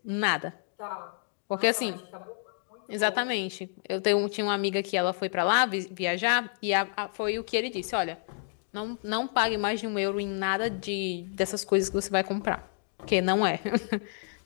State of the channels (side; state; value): right; silent; digital silence